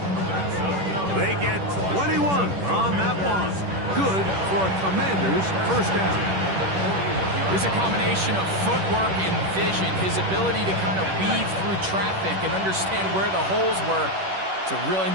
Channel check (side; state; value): left; late; 10 ms